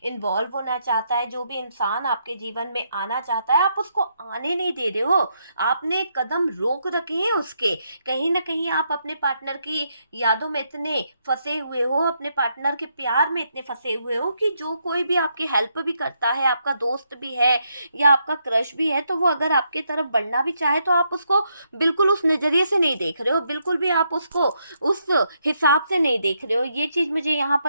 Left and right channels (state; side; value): inverted; both; correlation -0.78